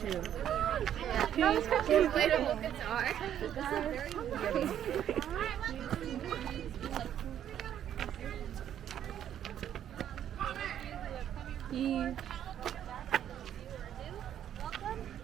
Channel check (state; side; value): quieter; left; 10.3 dB